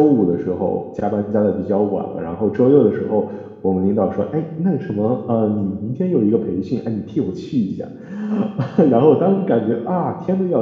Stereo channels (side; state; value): both; identical; correlation 1.00